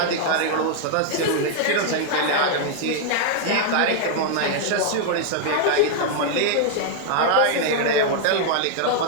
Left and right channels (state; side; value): different; both; correlation 0.00